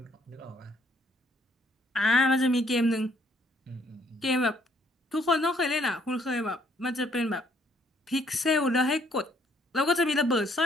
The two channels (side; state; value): both; normal; correlation 0.66